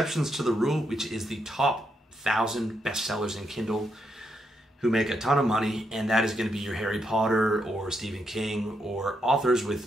to the rule, which is the top 1,000 bestsellers in Kindle who make a ton of money, and that is going to be your Harry Potter or Stephen King or authors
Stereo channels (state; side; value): normal; both; correlation 0.80